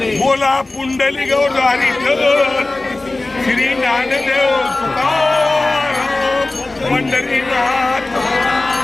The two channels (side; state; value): right; quieter; 3.0 dB